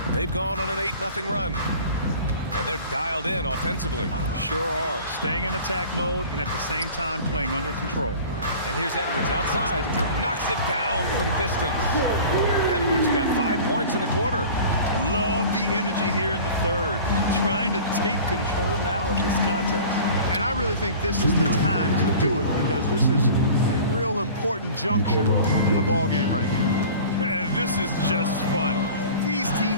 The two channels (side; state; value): both; inverted; correlation -0.42